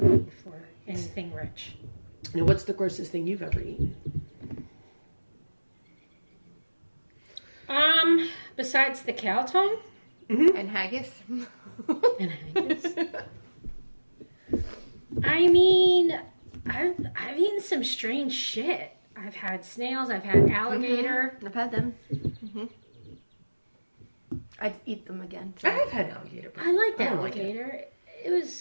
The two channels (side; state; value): both; inverted; correlation -1.00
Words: eat for anything rich. Now, what's the grossest thing you've ever eaten? Besides the cow tongue And haggis. and haggis. I mean, I've eaten some strange shit. I've had snails. I've had alligator. I've had them. I'd eat them again. I have had alligator. I liked I don't like it. alligator. It